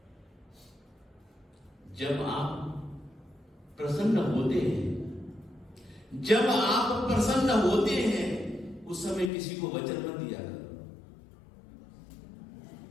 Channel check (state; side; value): drops out; right; at 9.3 s